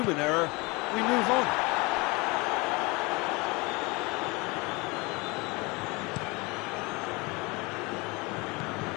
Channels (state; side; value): quieter; right; 26.0 dB